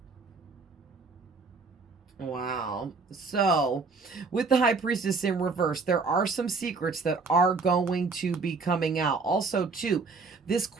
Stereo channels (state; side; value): quieter; left; 4.3 dB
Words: Wow. So, with the High Priestess in reverse, there are some secrets that are going to be coming out. Also, too, this